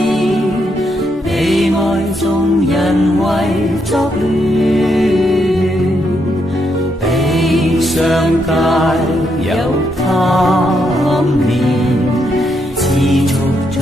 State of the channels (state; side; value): normal; both; correlation 0.78